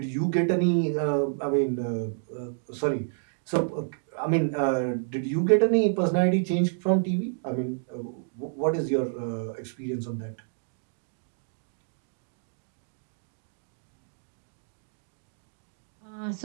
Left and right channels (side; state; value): left; silent; digital silence